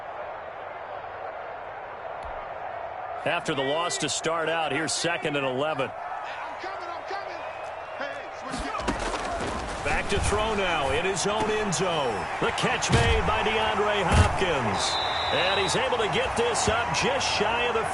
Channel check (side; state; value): both; identical; correlation 1.00